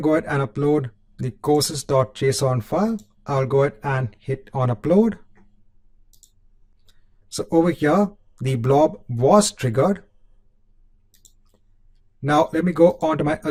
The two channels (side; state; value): both; identical; correlation 1.00